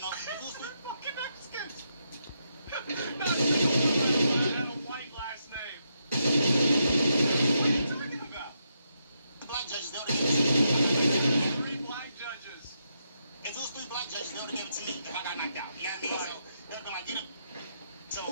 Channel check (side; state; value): both; inverted; correlation -0.81